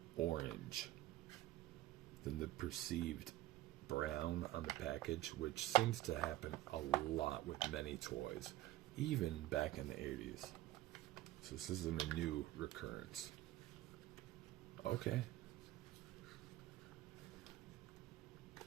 orange than the perceived brown on the package, which seems to happen a lot with many toys, even back in the 80s. So this isn't a new recurrence. Okay.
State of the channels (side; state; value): left; quieter; 16.1 dB